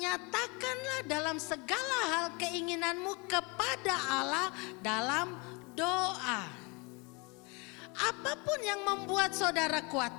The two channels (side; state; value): right; quieter; 29.4 dB